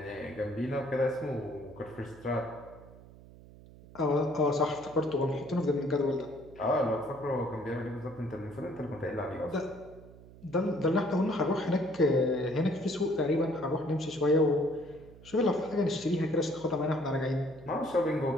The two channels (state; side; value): noise; right; hum, 20 dB below the sound